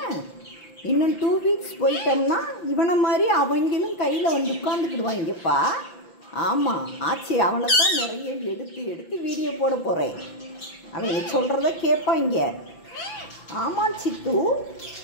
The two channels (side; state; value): right; late; 5.9 ms